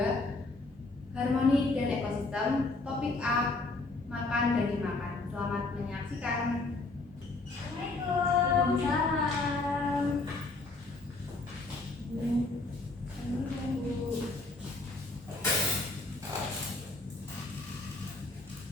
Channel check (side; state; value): right; quieter; 3.3 dB